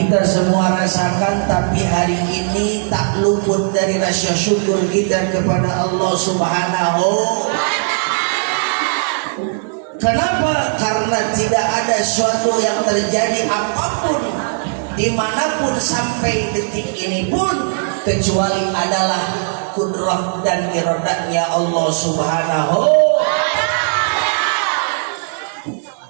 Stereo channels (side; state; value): left; silent; 68 dB below the other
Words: semua rasakan, tapi hari ini tak luput dari rasa syukur kita kepada Allah Subhanahu. Kenapa? Karena tidak ada suatu yang terjadi apapun dimanapun sampai detik ini pun kecuali adalah kudrah dan iradatnya Allah Subhanahu.